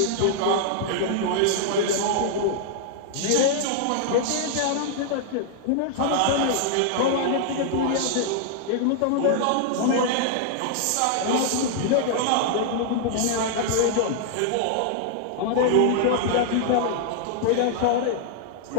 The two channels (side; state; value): both; different; correlation -0.01